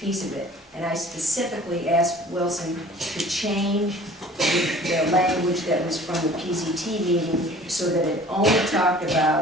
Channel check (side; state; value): both; normal; correlation 0.48